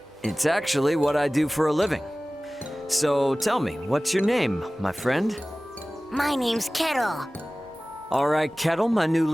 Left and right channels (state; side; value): normal; both; correlation 0.98